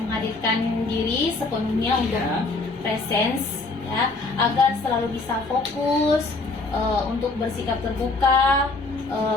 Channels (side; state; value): right; quieter; 3.5 dB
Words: diri sepenuhnya untuk presence, ya, agar selalu bisa fokus, untuk bersikap terbuka,